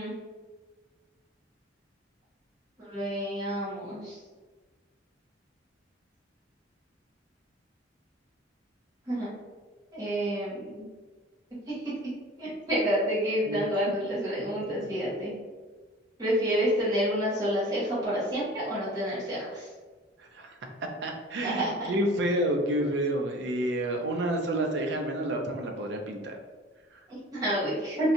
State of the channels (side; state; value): both; normal; correlation 0.42